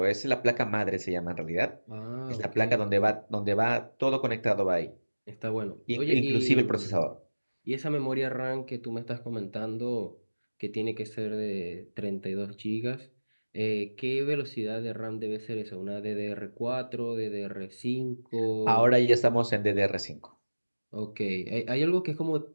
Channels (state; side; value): inverted; both; correlation -1.00